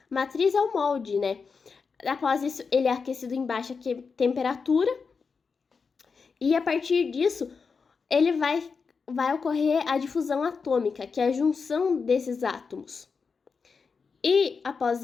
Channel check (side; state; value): right; quieter; 5.2 dB